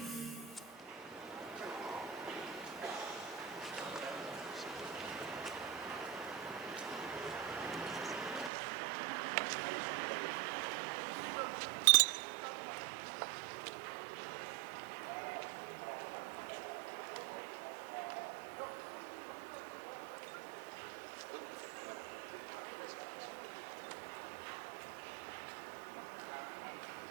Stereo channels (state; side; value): drops out; left; at 8.5 s